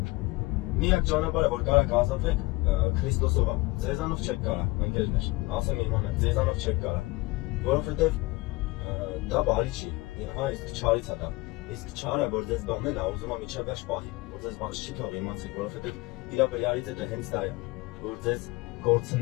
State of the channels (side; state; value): right; quieter; 22.5 dB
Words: միակ ճանապարհը, որ կարաք ազատվեք, Քրիստոսով է։ Ձեզանով չեք կարա, ընկերներ, ասեմ իմանա, ձեզանով չեք կարա, որովհետեւ դա բարի չի, իսկ չարից է դա։ Իսկ չարը, որ ձեզ բանն է, ուզում է միջև վերջ պահի, որ ձեզ բաց չի թող իմացեք, որովհետև իր բրյարից է դա հենց դա է, որ ձեզ